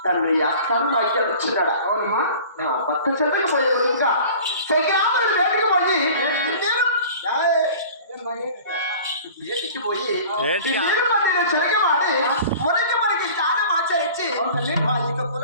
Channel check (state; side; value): inverted; both; correlation -0.43